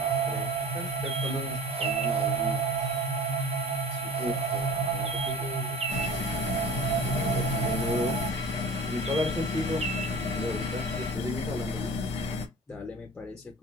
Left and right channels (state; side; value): normal; both; correlation 0.39